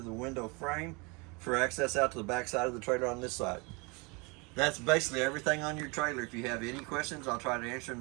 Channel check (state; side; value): quieter; left; 29.0 dB